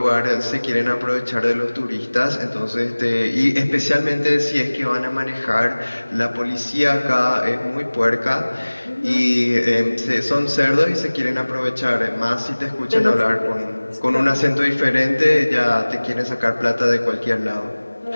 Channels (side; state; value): both; inverted; correlation -1.00